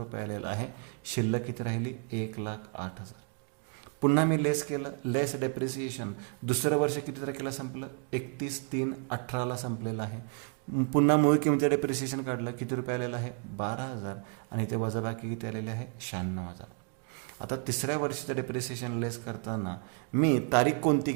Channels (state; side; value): quieter; left; 38.7 dB